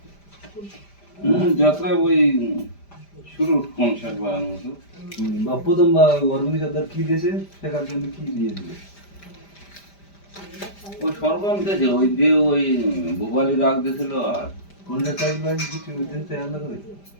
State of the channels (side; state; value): right; late; 5.0 ms